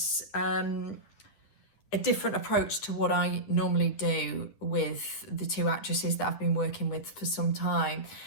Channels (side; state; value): right; late; 9.9 ms